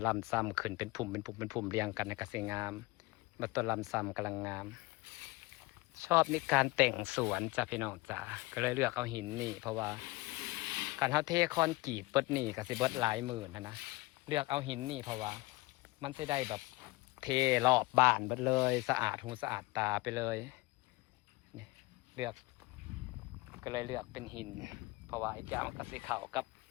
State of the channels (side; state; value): right; quieter; 22.3 dB